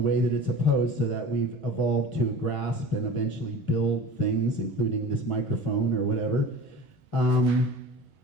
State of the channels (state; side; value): normal; both; correlation 0.37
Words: that it's opposed, so that we've evolved to grasp and eventually build things, including this microphone or whatever.